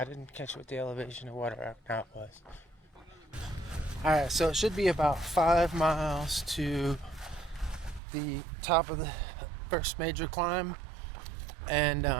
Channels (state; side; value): drops out; left; at 8.0 s